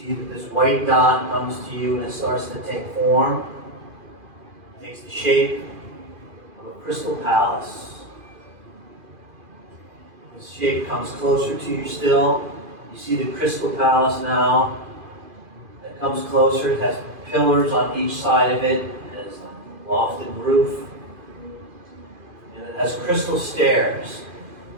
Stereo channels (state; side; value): late; left; 2.5 ms